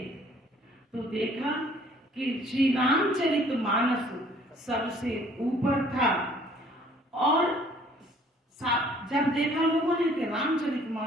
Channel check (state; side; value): normal; both; correlation 0.57